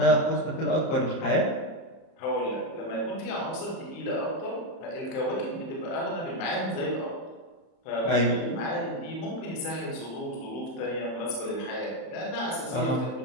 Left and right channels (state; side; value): late; right; 31 ms